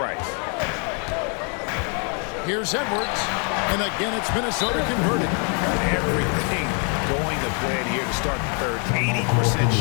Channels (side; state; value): right; quieter; 38.6 dB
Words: Here's Edwards. And again, it's Minnesota converted. Everything going to plan here to start the third. 80%